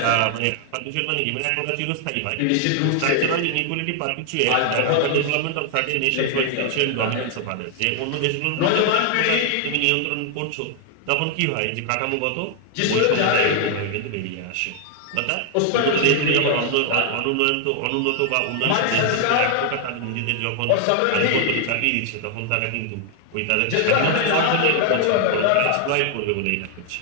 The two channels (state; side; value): different; both; correlation 0.00